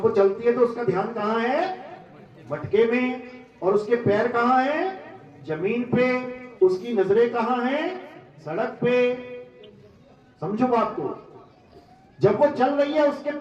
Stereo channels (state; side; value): identical; both; correlation 1.00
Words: वो चलती है तो उसका ध्यान कहां है? मटके में। और उसके पैर कहां है? जमीन पे। उसकी नजरें कहां है? सड़क पे। समझो बात को। जब वो चल रही है उसके